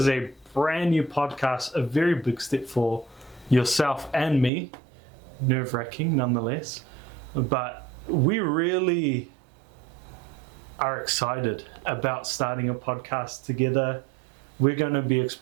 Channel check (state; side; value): drops out; left; at 4.5 s